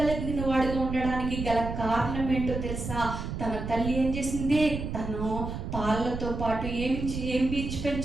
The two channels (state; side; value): noise; right; rumble, 5 dB below the sound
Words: వాడిగా ఉండడానికి గల కారణం ఏంటో తెలుసా? తన తల్లి ఏం చేసింది? తను పాలతో పాటు ఏమి